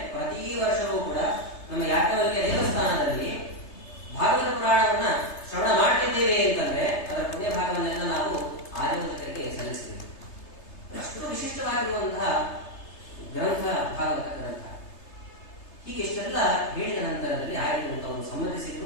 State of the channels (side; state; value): right; late; 3.3 ms